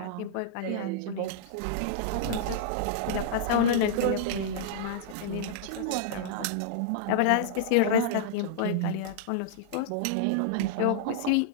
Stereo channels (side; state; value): both; different; correlation -0.02